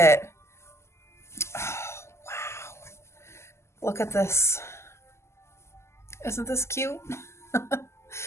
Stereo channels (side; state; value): right; late; 0.13 ms